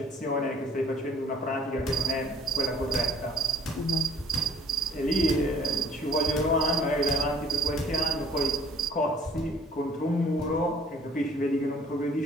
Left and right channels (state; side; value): normal; both; correlation 0.56